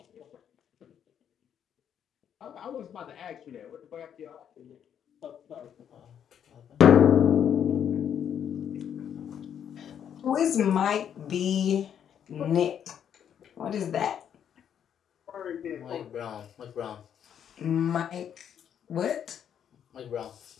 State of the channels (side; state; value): right; quieter; 8.9 dB